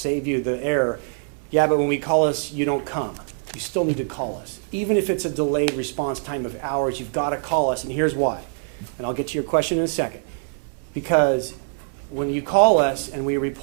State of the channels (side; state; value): left; silent; 63 dB below the other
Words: you the error. Yeah, but when we call us, you don't come. You still need to call us. Even if it's a delayed response time of hours, you've got to call us, and here's why. And I'll get to your question in a second. Because when you call us and we